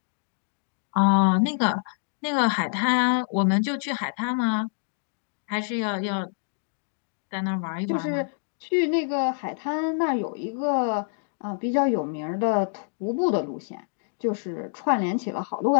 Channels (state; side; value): silent; right; digital silence